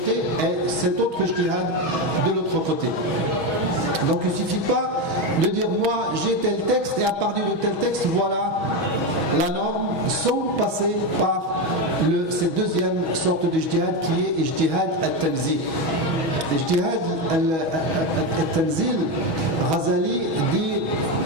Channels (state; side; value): late; left; 6.2 ms